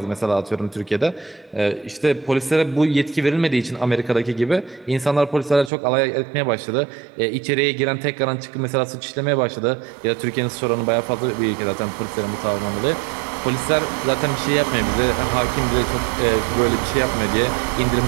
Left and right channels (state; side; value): drops out; left; at 5.7 s